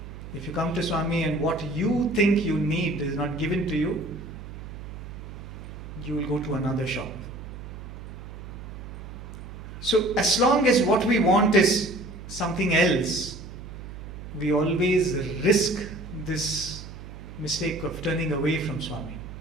If you come to Swami and what you think you need is not given to you, you will go to another shop. So as long as what we want is something else, we always risk this mistake of turning away from Swami.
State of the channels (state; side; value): noise; right; hum, 12 dB below the sound